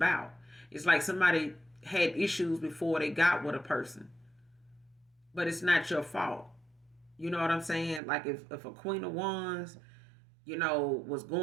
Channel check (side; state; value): left; drops out; at 8.0 s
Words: It's like somebody had issues before they got with a person, but it's not your fault. You know what I'm saying? Like, if a Queen of Wands, was